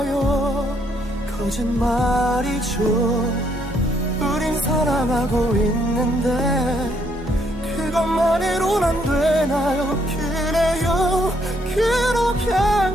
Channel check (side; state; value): both; normal; correlation 0.71